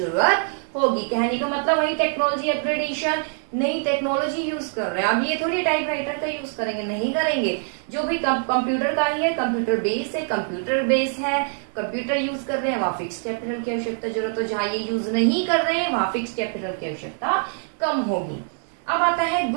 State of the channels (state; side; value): silent; left; 57 dB below the other